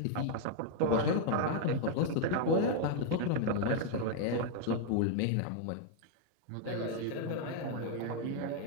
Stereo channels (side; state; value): both; different; correlation 0.00